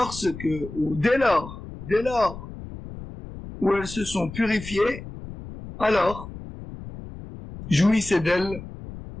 ou dès lors où elles se sont purifiées, alors, jouissez d'elles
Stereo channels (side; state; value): left; noise; rumble, 13 dB below the sound